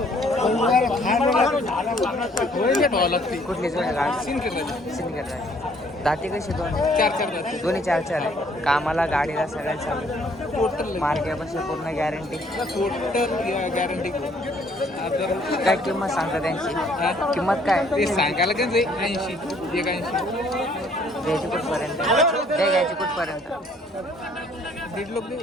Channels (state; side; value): normal; both; correlation 0.62